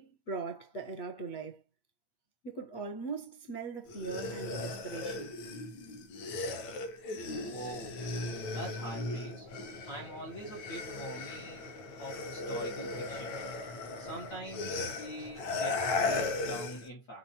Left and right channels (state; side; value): late; right; 9.0 ms